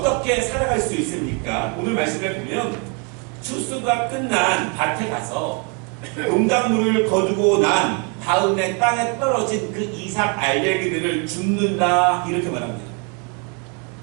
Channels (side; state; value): left; quieter; 35.5 dB